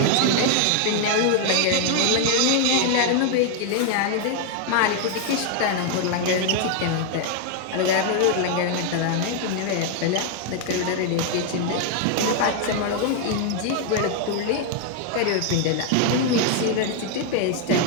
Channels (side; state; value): both; different; correlation 0.00